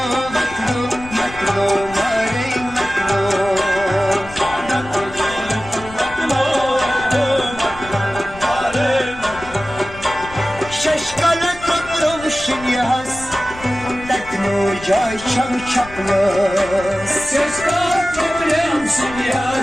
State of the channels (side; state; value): left; noise; rumble, 17 dB below the sound